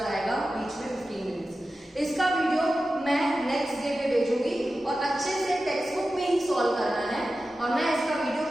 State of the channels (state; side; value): normal; both; correlation 0.93